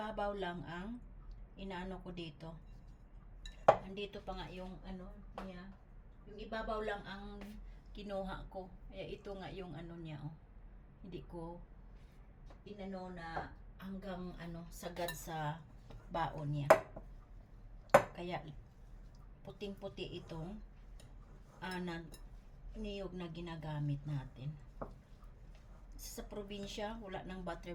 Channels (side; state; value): both; identical; correlation 1.00